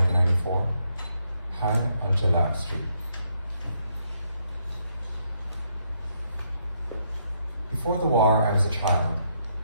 High Al-Jalak Street. Before the war, I was a child.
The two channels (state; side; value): inverted; both; correlation -0.75